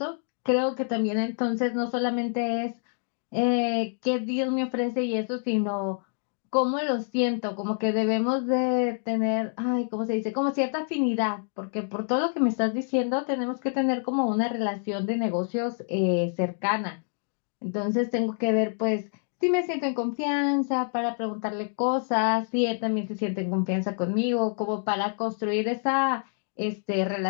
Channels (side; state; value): right; silent; 55 dB below the other